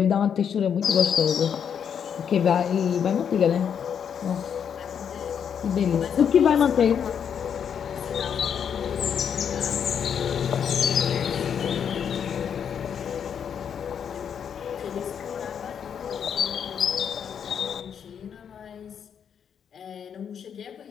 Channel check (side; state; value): right; quieter; 7.9 dB